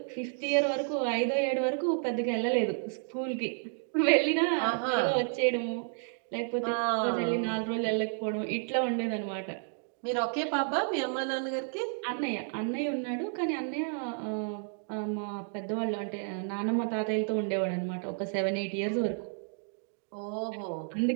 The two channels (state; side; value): silent; left; 57 dB below the other